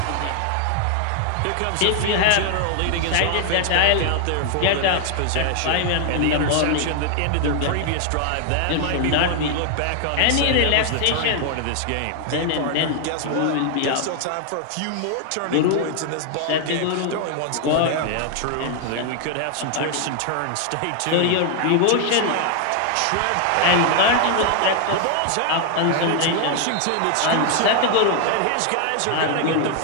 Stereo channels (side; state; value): both; different; correlation 0.00